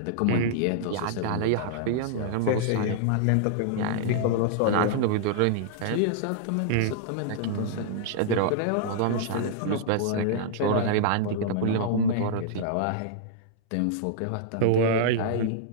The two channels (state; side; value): different; both; correlation -0.01